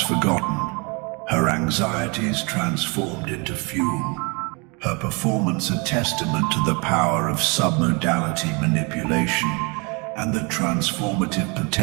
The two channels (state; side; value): quieter; left; 30.7 dB